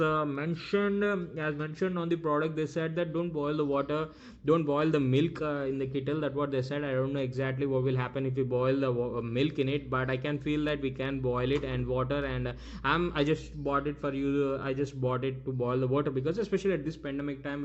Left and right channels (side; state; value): both; identical; correlation 1.00